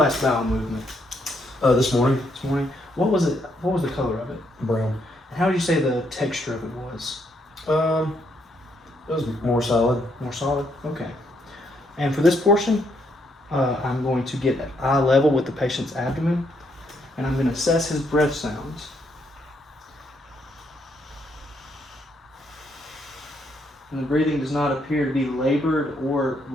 bowel movement? This morning. This morning. What was it? What was the color of it? Brown. And how would you say the texture of it was? It was more solid. More solid. Okay. And for this portion, I'm going to get at eye level with the patient's abdomen, and I'm going to assess his breath sounds. And the breathing does not appear to be labored or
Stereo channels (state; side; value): normal; both; correlation 0.74